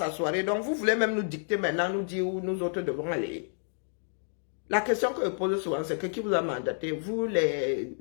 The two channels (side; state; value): right; silent; digital silence